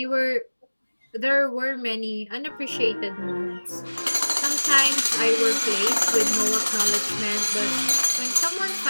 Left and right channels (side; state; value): both; inverted; correlation -1.00